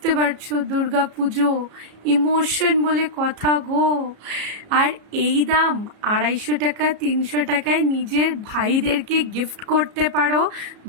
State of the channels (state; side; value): late; left; 33 ms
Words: পারছো, দুর্গা পুজো, ইমোশন বলে কথা গো। আর এই দাম 250 টাকা 300 টাকায় নিজের ভাইদেরকে গিফট করতে পারো।